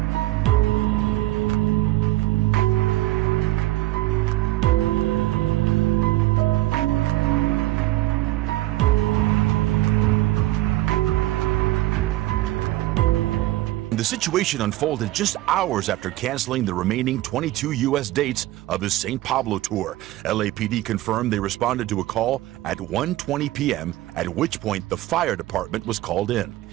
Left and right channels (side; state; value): left; quieter; 17.1 dB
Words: The situation unfolded just hours after canceling the remaining 22 U.S. dates of his St. Pablo tour. LAPD confirmed they responded to a call at 1:20 p.m., at which point the fire department was called in.